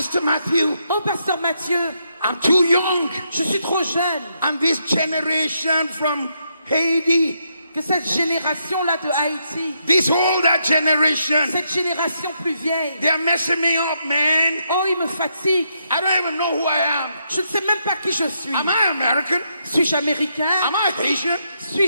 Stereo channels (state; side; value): inverted; both; correlation -0.79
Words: Matthew, Oh, Pasteur Mathieu, I'm too young. je suis trop jeune. And this generation from Haiti, Que cette génération-là de Haïti, this older generation, cette génération plus vieille, they're messing me up, man. oh, il me fatigue. I don't even know who I am. Je ne sais même pas qui je suis. Am I American? Suis-je américain? Am I Haitian?